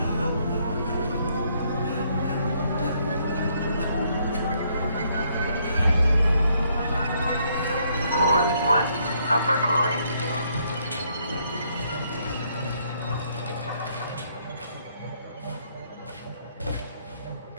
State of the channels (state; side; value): inverted; both; correlation -0.70